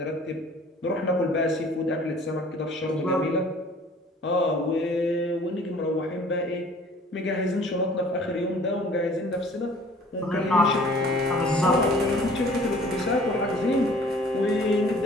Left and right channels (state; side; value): normal; both; correlation 0.51